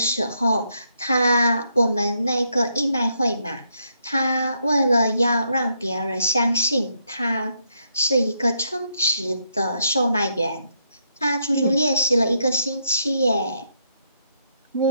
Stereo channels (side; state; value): both; inverted; correlation -0.77